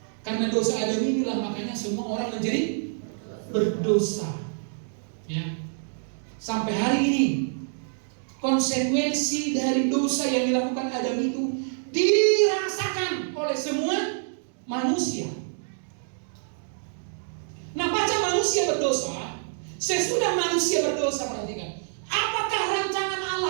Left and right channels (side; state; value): left; silent; digital silence